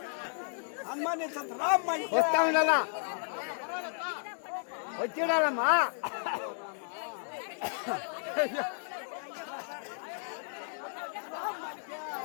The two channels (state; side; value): silent; right; digital silence